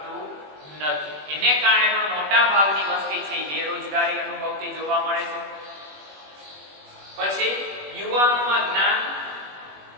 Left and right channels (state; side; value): late; left; 21 ms